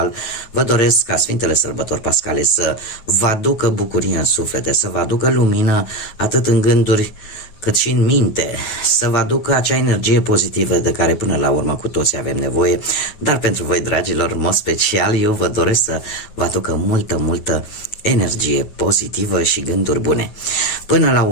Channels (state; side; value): late; right; 9.3 ms